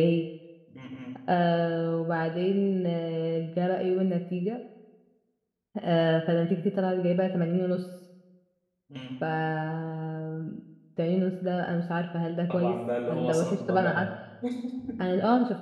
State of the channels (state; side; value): identical; both; correlation 1.00